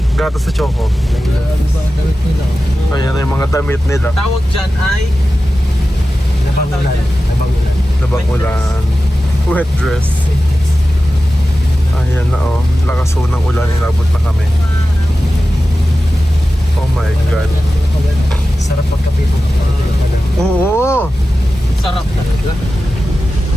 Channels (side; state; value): both; normal; correlation 0.94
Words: Gatas sa choco. Ayan na yung mga damit nila. Tawag dyan ay... Nabangulan. Nabangulan. Labang ulan. Wet dress. Ayan na, oh. Lakas ho ng ulan, inabot na kami. Oh my God. Sarap magkape po. Oo! Sarap talaga.